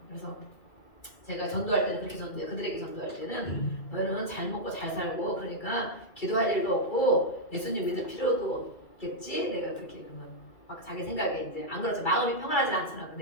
그래서 제가 전도할 때는 그렇게 전도해요. 그들에게 전도할 때는 너희는 잘 먹고 잘 살고 그러니까 기도할 일도 없고 예수님 믿을 필요도 없겠지? 내가 그렇게 그러면 막 자기 생각에 이제 안 그렇죠. 마음이 평안하지 않잖아. 그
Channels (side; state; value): right; late; 2.3 ms